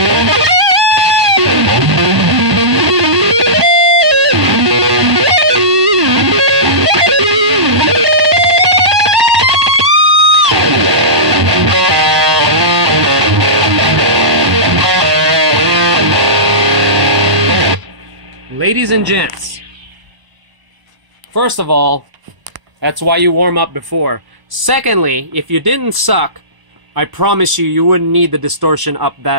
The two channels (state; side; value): late; left; 1.0 ms